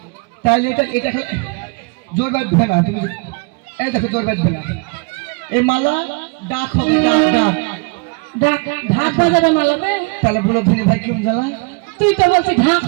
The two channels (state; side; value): quieter; left; 30.7 dB